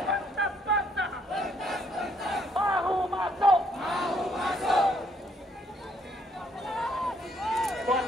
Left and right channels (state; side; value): normal; both; correlation 0.68